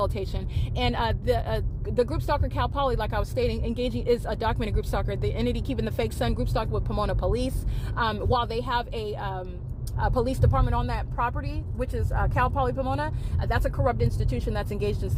And the group stalker Cal Poly, like I was stating, engaging is a documented group stalker. The entity keeping the fake sun group stalking with Pomona police, while they have a police department on that property, which is Cal Poly Pomona. That's a corrupt institution that's engaged in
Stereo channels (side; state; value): both; identical; correlation 1.00